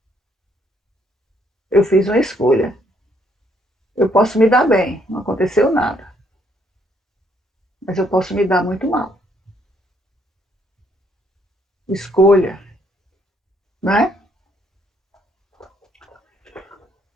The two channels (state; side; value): normal; both; correlation 0.69